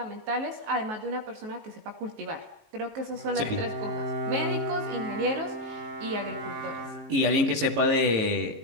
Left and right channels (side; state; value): left; late; 18 ms